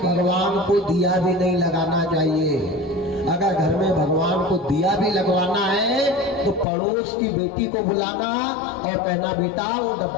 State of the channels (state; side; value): drops out; right; at 6.7 s